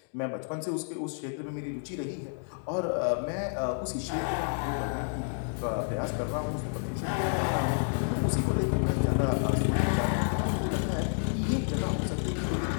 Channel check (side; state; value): right; silent; 58 dB below the other